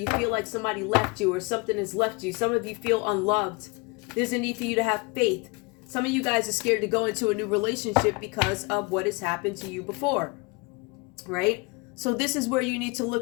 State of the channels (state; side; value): quieter; right; 28.1 dB